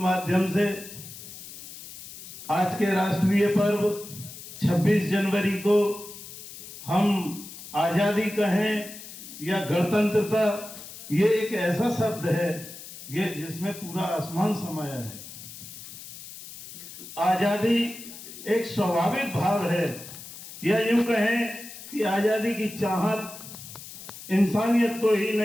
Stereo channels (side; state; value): left; noise; hiss, 14 dB below the sound